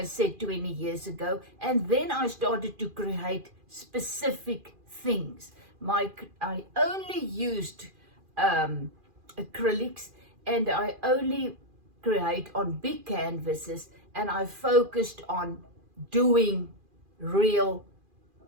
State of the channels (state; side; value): late; left; 2.4 ms